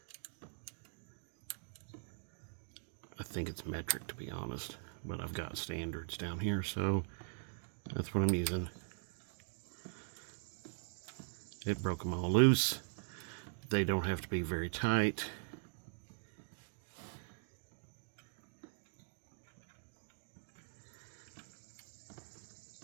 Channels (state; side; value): silent; left; digital silence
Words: I think it's metric, to be honest, but I've got standards down here, so that's what I'm using. It broke them all loose. They don't have to be very tight.